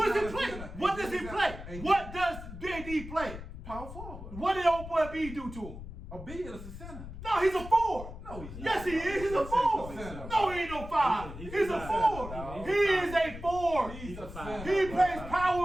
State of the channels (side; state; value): left; noise; rumble, 11 dB below the sound